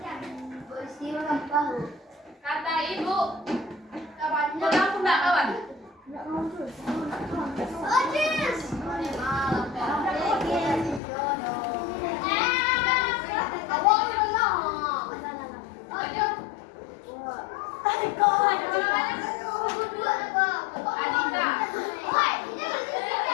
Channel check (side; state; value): right; drops out; at 11.0 s